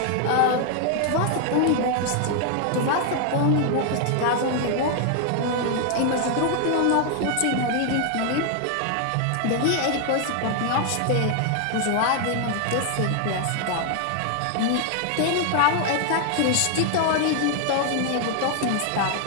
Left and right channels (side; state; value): both; different; correlation 0.00